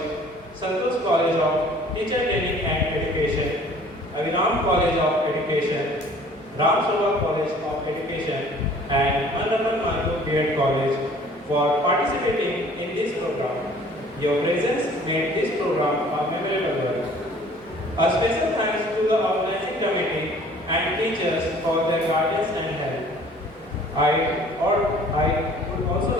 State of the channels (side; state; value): both; normal; correlation 0.52